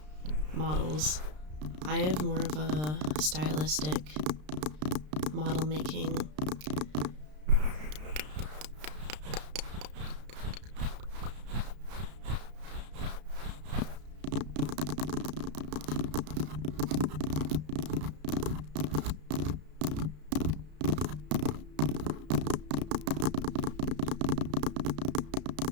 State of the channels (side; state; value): left; late; 33 ms